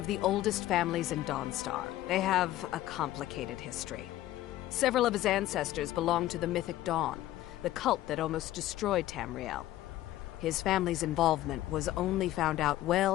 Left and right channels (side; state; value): right; quieter; 14.7 dB